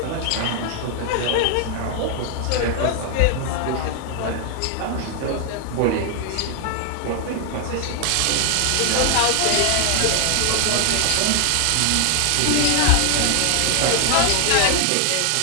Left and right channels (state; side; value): different; both; correlation 0.00